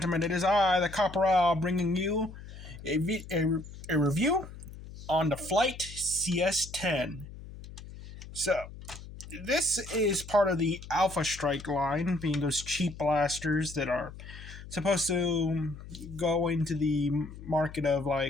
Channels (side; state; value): left; noise; hum, 14 dB below the sound